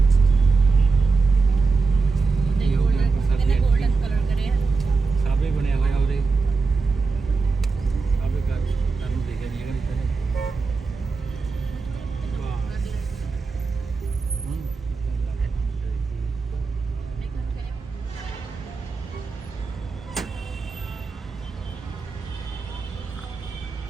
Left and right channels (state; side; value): quieter; left; 4.3 dB